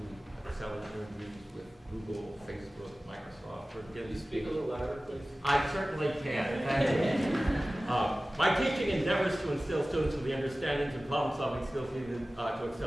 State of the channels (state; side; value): normal; both; correlation 0.97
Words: excel in interviews with Google, Facebook, Microsoft, or Can you speak a little louder, please? I certainly can. Thank you. My teaching endeavors to instill students with the understandings and problem-solving skills needed to